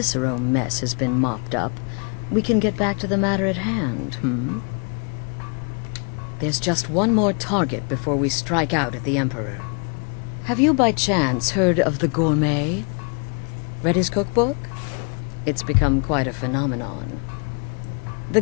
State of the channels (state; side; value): quieter; right; 38.0 dB